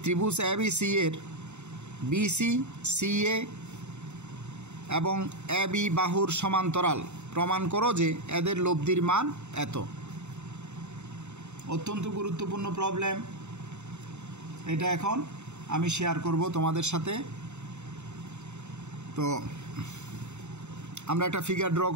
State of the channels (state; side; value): late; left; 0.82 ms